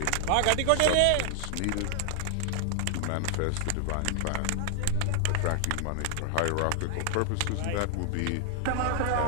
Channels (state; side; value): different; both; correlation 0.00